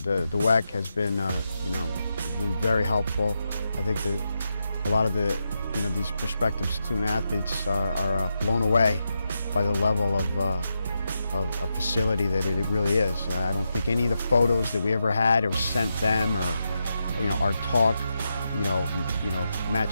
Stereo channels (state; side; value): inverted; both; correlation -0.86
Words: the WEC has been very helpful. I think that a lot of these prospective student athletes are blown away by the level of facility that it really is. I don't think any of the photos that we ever had or sent them, or our talk,